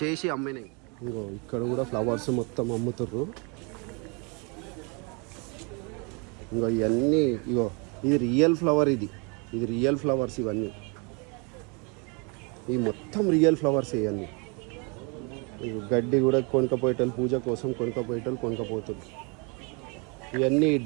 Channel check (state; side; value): quieter; left; 32.5 dB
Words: చేసి అమ్మినాయి. ఇంకో ఇక్కడ కూడా ఫ్లవర్స్ మొత్తం అమ్ముతుర్రు. ఇంకో ఇవన్నీ ఇగో ఇది రియల్ ఫ్లవర్. ఇది రియల్ ఫ్లవర్స్. ఇవన్నీ ఈ మొత్తం రియల్ ఫ్లవర్స్. ఇవన్నీ గడ్డి కూడా కొనుక్కపోయేటోళ్ళు, పూజ కోసం కొనుక్కపోతారు. ఇవన్నీ